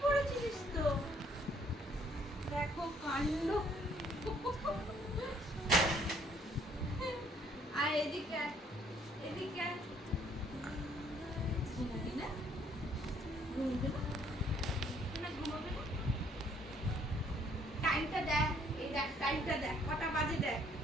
পড়েছিস তো? দেখো কাণ্ড। আর এদিকে আয়, এদিকে আয়। ঘুমোবি না? ঘুমোবি না? না ঘুমোবি না? টাইমটা দেখ, এই দেখ টাইমটা দেখ, কটা বাজে দেখ।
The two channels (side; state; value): both; normal; correlation 0.64